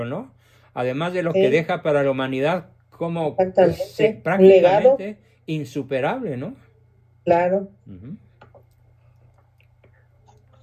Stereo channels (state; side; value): identical; both; correlation 1.00